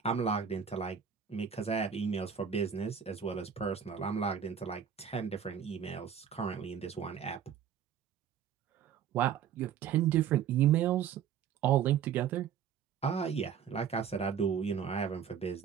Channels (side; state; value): left; quieter; 8.1 dB